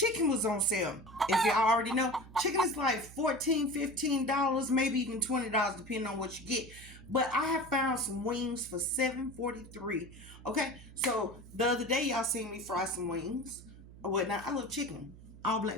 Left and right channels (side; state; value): right; noise; hum, 18 dB below the sound